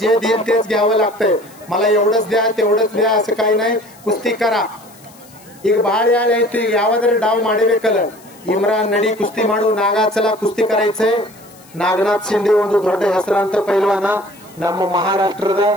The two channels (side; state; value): left; noise; hiss, 25 dB below the sound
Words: जे देईल तेच घ्यावं लागतंय. मला एवढंच द्या तेवढंच द्या असं काही नाही. कुस्ती करा. ಈಗ ಬಹಳ ಯಾಳೆ ಐತಿ. ಈಗ ಯಾವ್ದಾರ ಡಾವ್ ಮಾಡಬೇಕಲ್ಲ. ಇಮ್ರಾನ್ ನಡಿ ಕುಸ್ತಿ ಮಾಡು. ನಾಗಾಚಲ ಕುಸ್ತಿ ಕರಾಯ್ಚೆ. ನಾಗನಾಥ್ ಶಿಂದೆ ಒಂದು ದೊಡ್ಡ ಹೆಸರಾಂತ ಪೈಲ್ವಾನ ನಮ್ಮ ಮಹಾರಾಷ್ಟ್ರದ